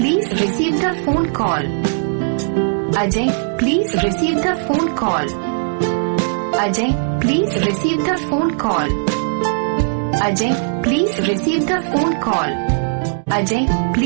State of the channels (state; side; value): silent; left; digital silence